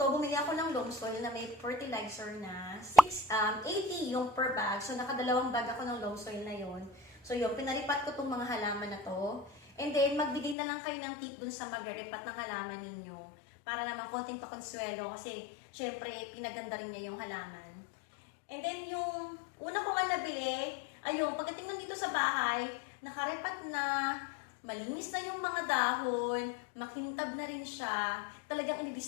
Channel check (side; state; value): right; drops out; at 10.6 s